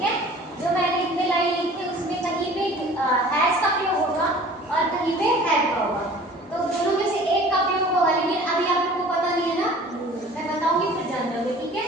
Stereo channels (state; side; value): normal; both; correlation 0.46